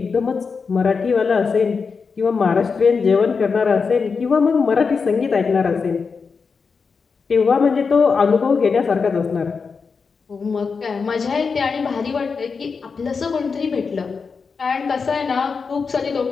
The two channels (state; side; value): quieter; right; 5.2 dB